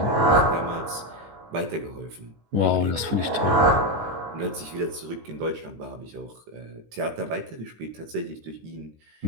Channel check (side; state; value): left; late; 18 ms